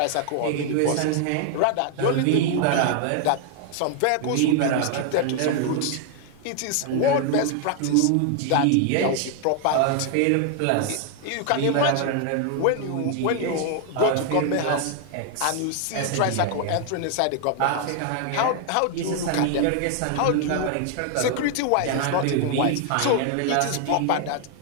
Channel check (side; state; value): both; different; correlation 0.00